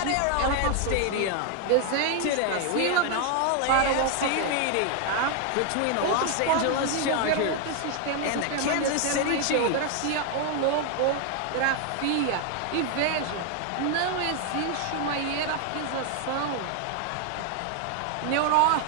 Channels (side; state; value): both; different; correlation 0.00